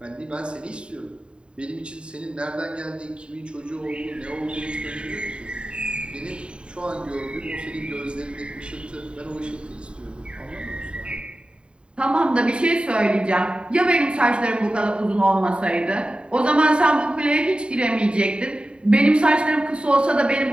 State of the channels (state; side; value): late; left; 0.053 ms